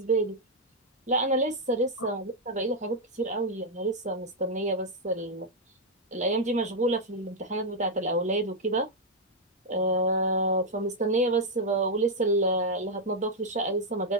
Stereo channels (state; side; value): normal; both; correlation -0.01